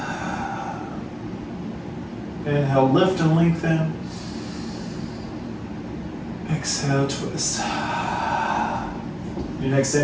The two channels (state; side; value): identical; both; correlation 1.00